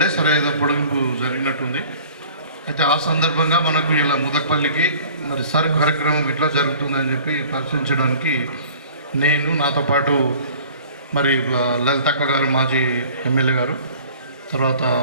సరే ఏదో పొడిగింపు జరిగినట్టుంది. అయితే ఆ సందర్భంగా మనకు ఇలా ముదక్పల్లికి మరి సర్ కార్యక్రమం ఇట్లా జరుగుతుందని చెప్పి పరిశీలించడానికి నేను నాతో పాటు మరి లలితక్క గారు మాజీ ఎమ్మెల్యే గారు, తర్వాత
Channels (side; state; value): both; inverted; correlation -0.47